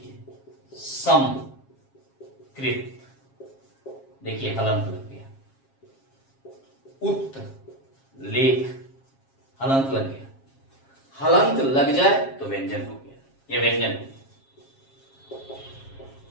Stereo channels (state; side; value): late; right; 7.4 ms